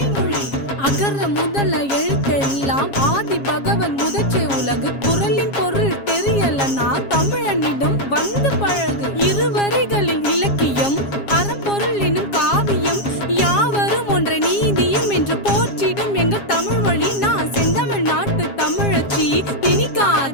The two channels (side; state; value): right; late; 7.3 ms